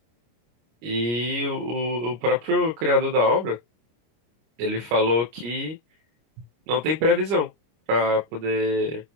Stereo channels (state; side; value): late; left; 25 ms